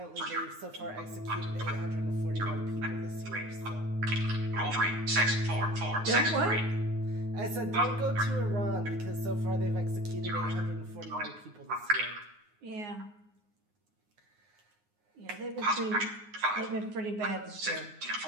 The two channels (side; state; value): left; late; 9.6 ms